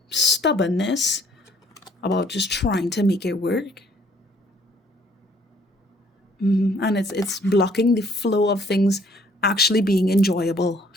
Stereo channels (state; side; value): normal; both; correlation 0.61